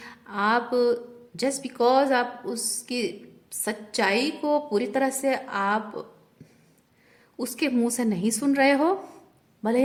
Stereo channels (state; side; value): identical; both; correlation 1.00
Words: आप जस्ट बिकॉज आप उसकी सच्चाई को पूरी तरह से आप उसके मुंह से नहीं सुन रहे हो, भले